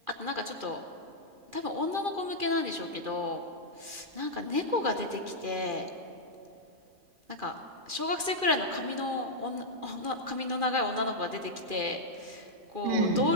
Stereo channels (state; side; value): late; left; 2.4 ms